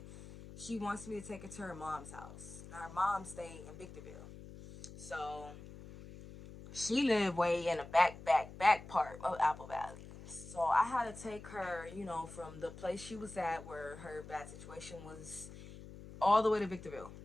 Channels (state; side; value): noise; left; hum, 15 dB below the sound